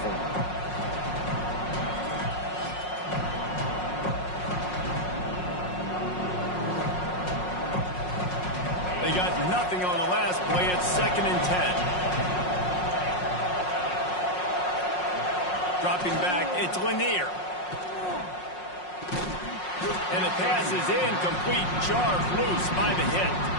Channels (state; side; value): late; right; 5.5 ms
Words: form. They got nothing on the last play. It's 2nd and 10. Dropping back, it's Lanier. And the pass is incomplete. Jarred loose by the hit.